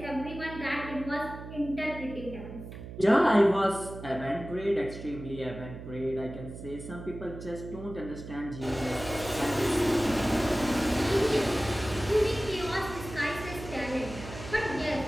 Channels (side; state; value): right; noise; hum, 11 dB below the sound